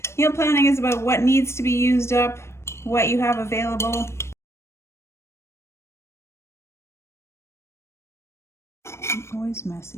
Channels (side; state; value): right; late; 0.13 ms